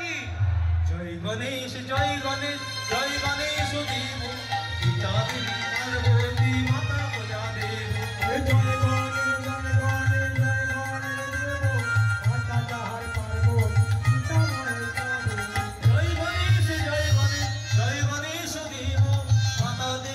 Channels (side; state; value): both; identical; correlation 1.00